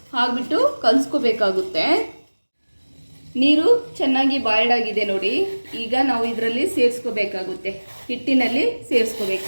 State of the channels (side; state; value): both; inverted; correlation -1.00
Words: ಹಾಕ್ಬಿಟ್ಟು ಕಲಿಸ್ಕೋಬೇಕಾಗುತ್ತೆ. ನೀರು ಚೆನ್ನಾಗಿ ಬಾಯ್ಲ್ಡ್ ಆಗಿದೆ ನೋಡಿ. ಈಗ ನಾವು ಇದರಲ್ಲಿ ಸೇರಿಸ್ಕೋಬೇಕಾಗುತ್ತೆ. ಹಿಟ್ಟಿನಲ್ಲಿ